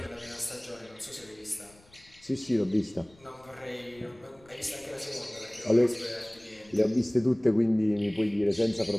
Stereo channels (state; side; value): noise; left; rumble, 28 dB below the sound